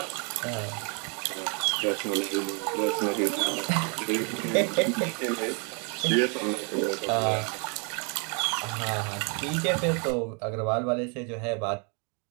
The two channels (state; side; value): quieter; left; 36.5 dB